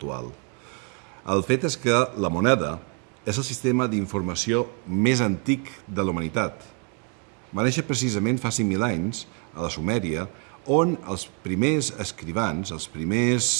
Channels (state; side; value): quieter; left; 35.2 dB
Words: El fet és que la moneda és el sistema d'informació més antic de la humanitat. Va néixer precisament fa 5.000 anys a la Sumèria, on els primers escrivans, els